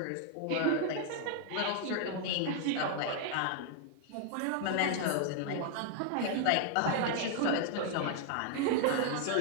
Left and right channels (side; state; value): both; different; correlation 0.00